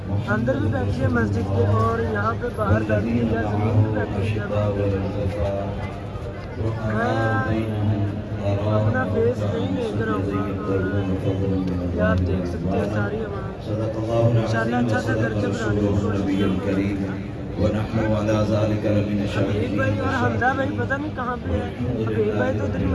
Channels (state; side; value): identical; both; correlation 1.00